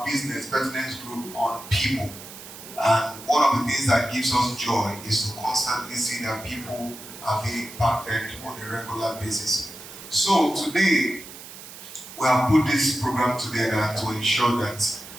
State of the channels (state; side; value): noise; right; hiss, 15 dB below the sound